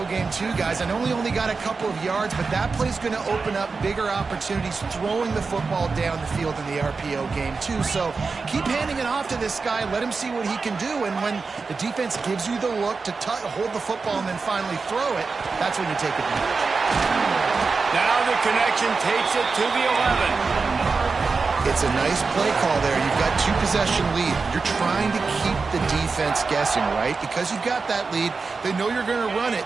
game too, guys. I know he only got a couple of yards, but that play's going to open up bigger opportunities throwing the football down the field in the RPO game too. So keep handing it off to this guy. Let him see what he can do. And when the defense gives you the look to hold the football and then finally throw it, that's when you take advantage. Now the connection takes it to the 11. It's a nice play call there. You've got 2-possession lead. You're trying to keep the defense guessing, right? Because you've got that lead, they know you're going to run it,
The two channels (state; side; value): quieter; left; 4.5 dB